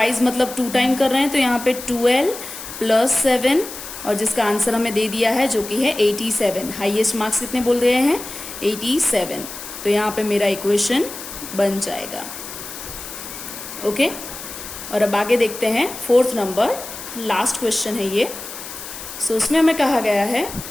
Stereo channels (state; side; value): noise; left; hiss, 11 dB below the sound